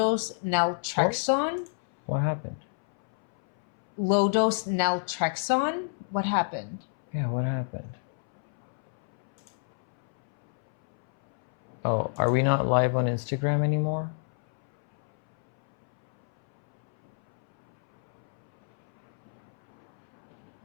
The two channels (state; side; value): silent; right; 59 dB below the other